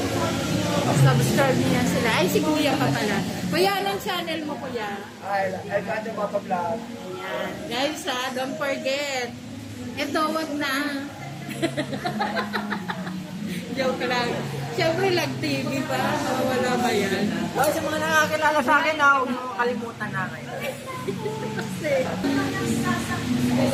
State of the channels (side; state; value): both; identical; correlation 1.00